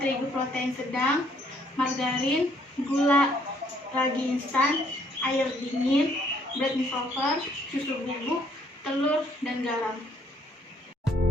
protein sedang, margarin, gula, ragi instan, air dingin, bread dissolver, susu bubuk, telur, dan garam.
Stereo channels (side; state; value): both; normal; correlation 0.67